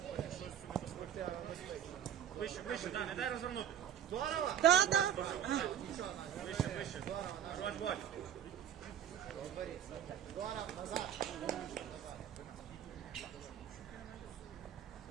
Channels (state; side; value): quieter; left; 9.7 dB